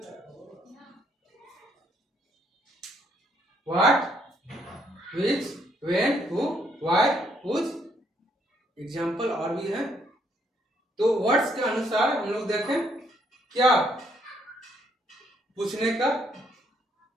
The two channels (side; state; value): both; normal; correlation 0.70